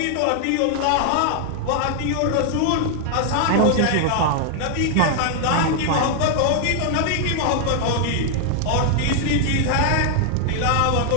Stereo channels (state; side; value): different; both; correlation 0.00